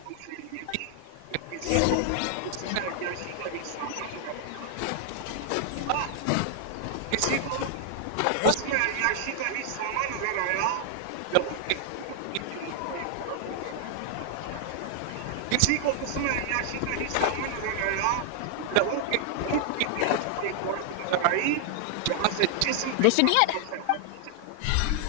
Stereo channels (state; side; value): different; both; correlation 0.00